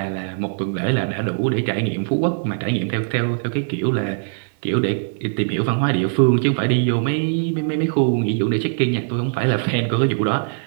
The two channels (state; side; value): silent; left; digital silence